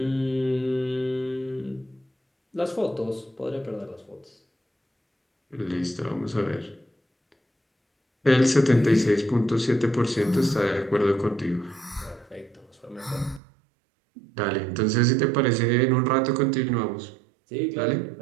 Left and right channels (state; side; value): drops out; left; at 13.4 s